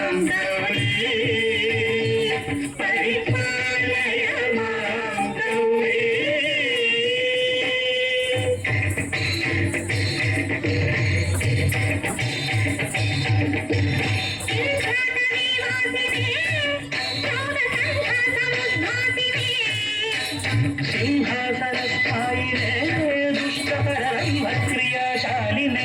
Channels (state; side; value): identical; both; correlation 1.00